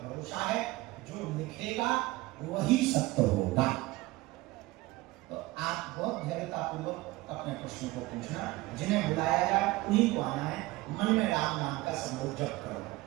भरोसा है। जो लिखेगा वही सत्य होगा। तो आप बहुत धैर्यतापूर्वक अपने प्रश्न को पूछना। जिन्हें बुलाया जाए उन्हीं को आना है। मन में राम नाम का समूह जप करो।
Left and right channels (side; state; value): left; quieter; 19.9 dB